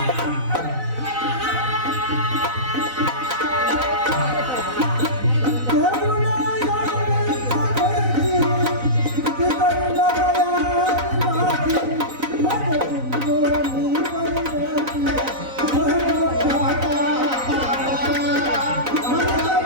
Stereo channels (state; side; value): late; left; 4.0 ms